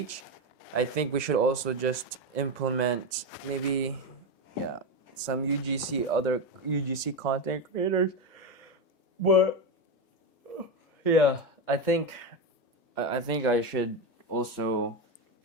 I think we should also just implement maybe, yeah, some other UGC content creators. But yeah, I think I should also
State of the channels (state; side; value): normal; both; correlation 0.13